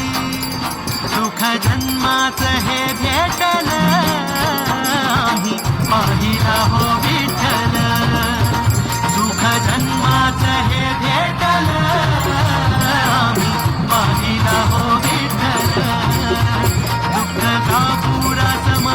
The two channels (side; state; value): both; identical; correlation 1.00